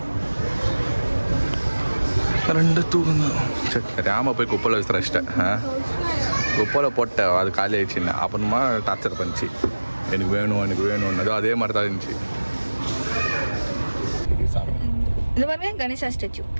ரெண்டு தூக்குங்க. சரி தெரியாமல் போய் குப்பையில் விசிறச்சிட்டேன். குப்பையில் போட்டேன், அது காலி ஆயிடுச்சுன்னு. அப்புறமா டார்ச்சர் பண்ணிச்சு, எனக்கு வேணும்னு. அதே மாதிரி தான் இருந்துச்சு. இது பாருங்க கணேசா ஸ்டாச்சு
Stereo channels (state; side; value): inverted; both; correlation -1.00